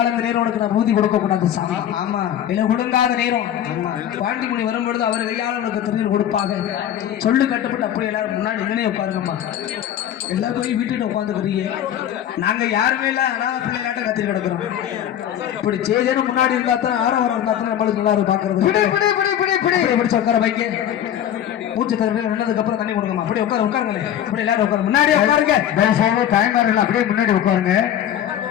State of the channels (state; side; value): quieter; right; 10.7 dB